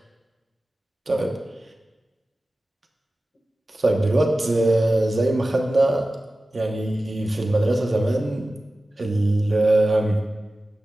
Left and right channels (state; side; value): normal; both; correlation 0.96